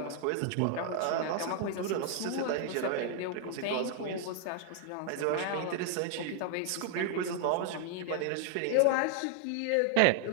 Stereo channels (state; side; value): different; both; correlation 0.01